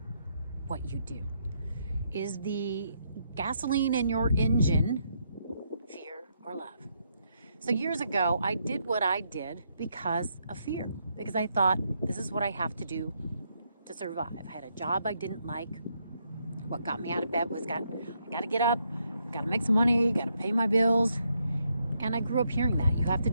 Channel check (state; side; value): inverted; both; correlation -0.76